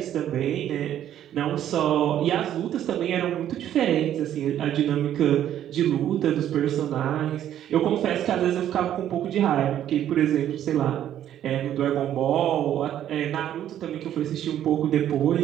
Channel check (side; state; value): left; quieter; 11.1 dB